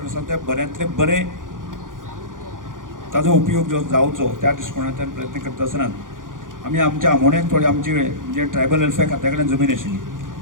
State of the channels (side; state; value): left; late; 0.89 ms